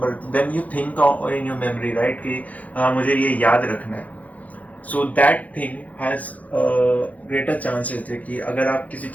then you think in your memory, right, कि मुझे ये याद रखना है. So that thing has greater chances है कि अगर आप किसी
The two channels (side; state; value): right; late; 0.073 ms